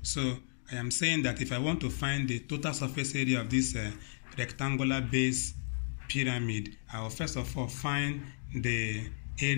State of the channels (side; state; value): right; silent; digital silence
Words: So I am saying that if I want to find the total surface area of this rectangular base pyramid, I will first of all find the